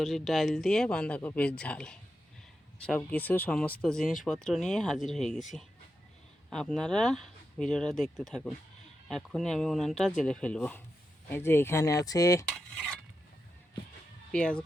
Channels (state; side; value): normal; both; correlation 0.88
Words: ডাল দিয়ে বাঁধাকপির ঝাল। সব কিছু সমস্ত জিনিসপত্র নিয়ে হাজির হয়ে গেছি। আপনারা ভিডিওটা দেখতে থাকুন। এখনই আমি উনানটা জ্বেলে ফেলবো। এই যে এখানে আছে পেঁয়াজ